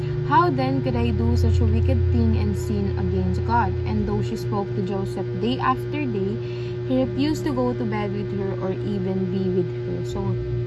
How then could I do such a wicked thing and sin against God? And though she spoke to Joseph day after day, he refused to go to bed with her or even be with her. So,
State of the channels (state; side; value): identical; both; correlation 1.00